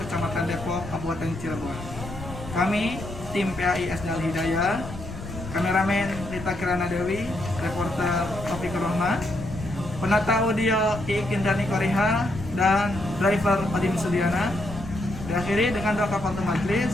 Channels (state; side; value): noise; left; rumble, 11 dB below the sound